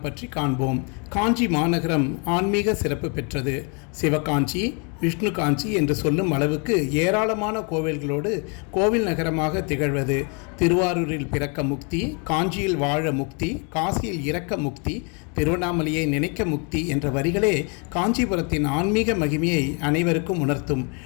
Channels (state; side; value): quieter; right; 35.7 dB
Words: பற்றி காண்போம். காஞ்சி மாநகரம் ஆன்மீக சிறப்பு பெற்றது. சிவகாஞ்சி, விஷ்ணு காஞ்சி என்று சொல்லும் அளவுக்கு ஏராளமான கோவில்களோடு கோவில் நகரமாக திகழ்வது. திருவாரூரில் பிறக்க முக்தி, காஞ்சியில் வாழ முக்தி, காசியில் இறக்க முக்தி, திருவண்ணாமலையை நினைக்க முக்தி என்ற வரிகளே காஞ்சிபுரத்தின் ஆன்மீக மகிமையை அனைவருக்கும் உணர்த்தும்.